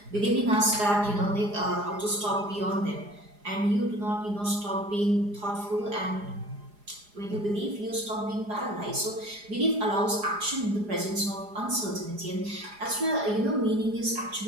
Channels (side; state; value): left; late; 4.9 ms